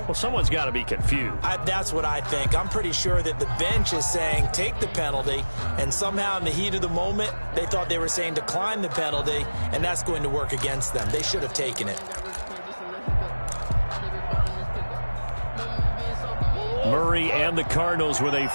Well, someone's got to be confused. That's what I think. I'm pretty sure that the bench is saying take the penalty, and somehow in the heat of the moment, they thought they were saying decline the penalty, and that's going to work against them. They should have taken it. Murray and the Cardinals with a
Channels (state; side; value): inverted; both; correlation -1.00